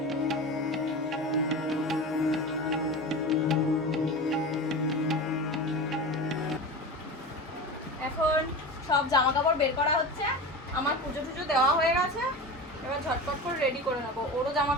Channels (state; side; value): normal; both; correlation 0.28